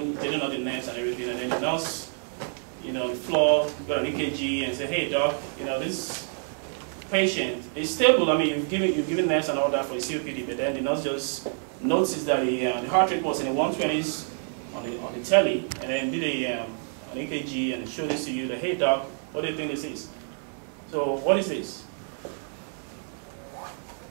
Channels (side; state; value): left; silent; 57 dB below the other